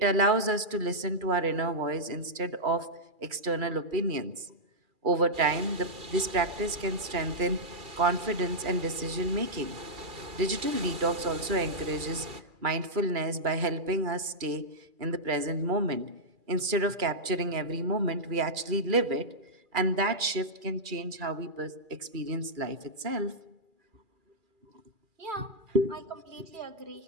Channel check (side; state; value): left; late; 2.4 ms